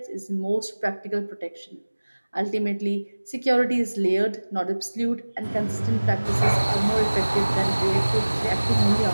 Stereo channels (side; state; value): both; inverted; correlation -1.00